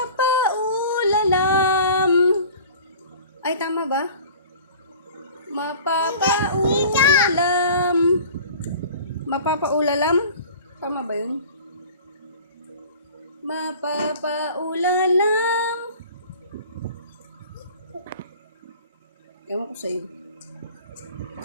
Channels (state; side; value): inverted; both; correlation -0.43